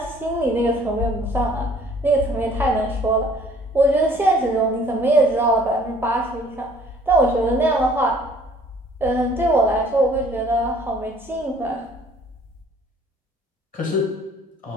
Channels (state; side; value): normal; both; correlation 0.56